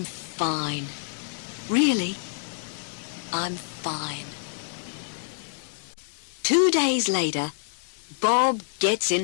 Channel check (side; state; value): right; silent; 59 dB below the other